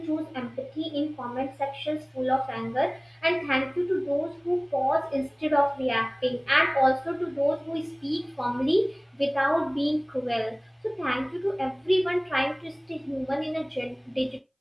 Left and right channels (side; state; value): both; identical; correlation 1.00